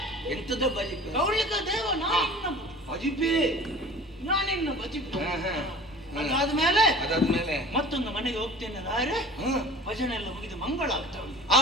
ಎಂತದ ಬಜಿಪೆ? ಕೌಂಡ್ಲಿಕ ದೇವ ನಾನಿನ್ನ ಬಜಿಪೆ, ನಾನಿನ್ನ ಬಜಿಪೆ. ಅದಾದ್ಮೇಲೆ ಮತ್ತೊಂದು ಮನೆಗೆ ಹೋಗ್ತೇನೆ ರಾಯರೇ. ಭಜನೆ ಎಲ್ಲ ಮುಗಿದು ಮಂಗಳ ಆಗ್ತಾ ಉಂಟು.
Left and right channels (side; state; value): both; normal; correlation 0.42